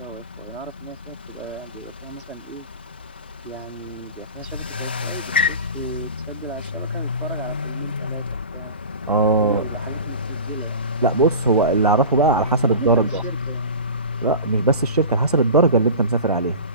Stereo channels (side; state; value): both; inverted; correlation -0.34